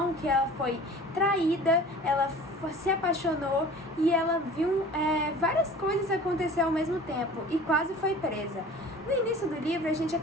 que ela foi traída, ela se apaixonou e ela viu várias coisas acontecer ao mesmo tempo e quase foi presa. No início do livro, a gente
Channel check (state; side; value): normal; both; correlation 0.43